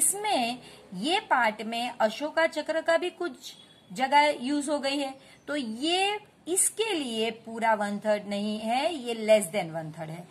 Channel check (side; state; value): both; identical; correlation 1.00